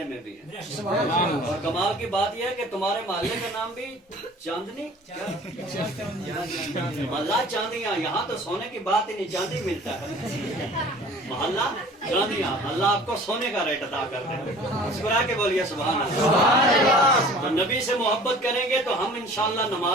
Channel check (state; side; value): normal; both; correlation 0.46